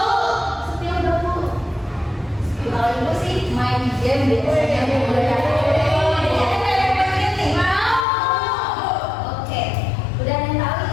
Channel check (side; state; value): right; drops out; at 8.1 s